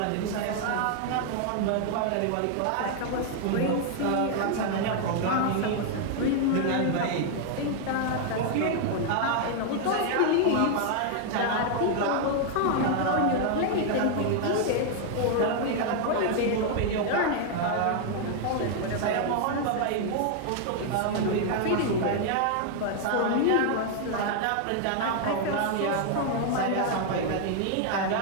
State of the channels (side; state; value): both; different; correlation 0.00